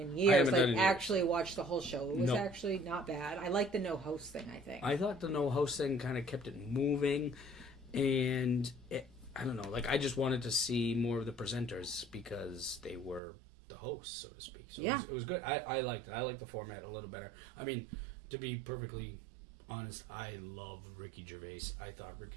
years. haven't done it in years. Actually watch the whole show. It was No. actually not bad. I like the no host thing, I think. I thought the no host thing kind of kept it moving, and I don't know. Like, I just wanted to see more of the presenters because they were the hosts, so to speak. So Yeah. it was good. I liked it. I liked the format a little better. I mean, to be perfectly honest, I love Ricky Gervais. I thought Ricky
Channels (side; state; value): left; drops out; at 13.2 s